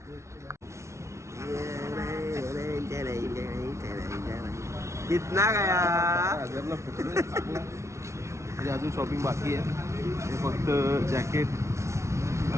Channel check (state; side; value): late; left; 0.13 ms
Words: कितना गया? हजारला फुटलं चांगलं. म्हणजे अजून शॉपिंग बाकी आहे. हे फक्त जॅकेट,